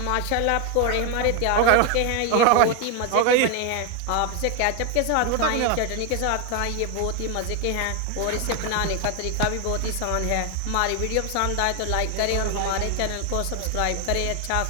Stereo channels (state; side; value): different; both; correlation 0.01